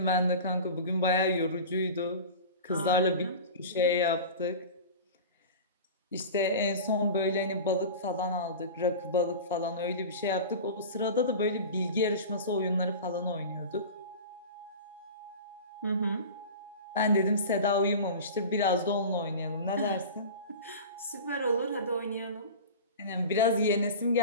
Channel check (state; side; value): inverted; both; correlation -0.33